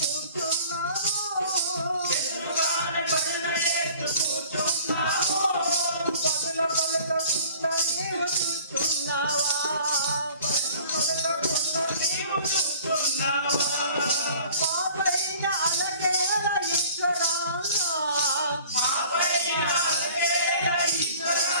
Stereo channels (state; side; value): inverted; both; correlation -0.48